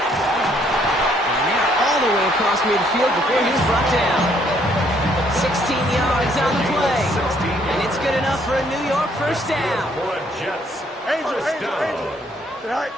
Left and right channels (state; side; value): normal; both; correlation 0.67